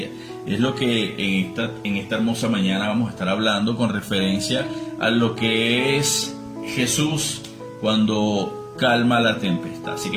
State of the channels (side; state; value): both; identical; correlation 1.00